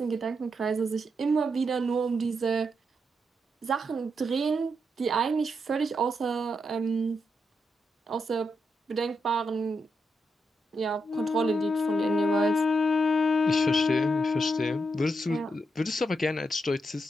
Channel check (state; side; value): normal; both; correlation 0.83